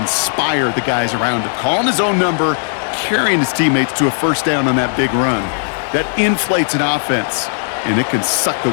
the guys around him. Calling his own number, carrying his teammates to a first down on that big run. That inflates an offense, and it can suck the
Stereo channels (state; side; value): silent; right; 60 dB below the other